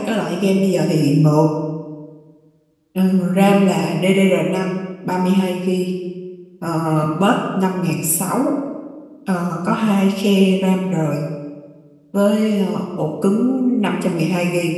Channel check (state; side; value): identical; both; correlation 1.00